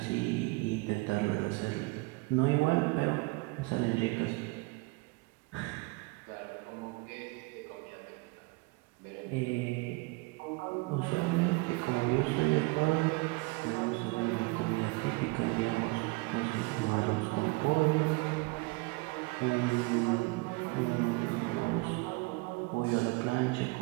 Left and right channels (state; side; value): quieter; left; 26.0 dB